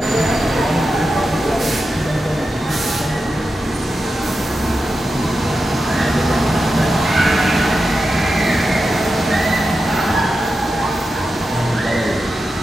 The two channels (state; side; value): normal; both; correlation 0.90